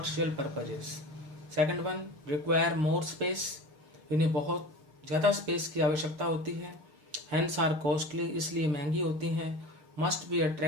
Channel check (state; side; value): late; left; 6.5 ms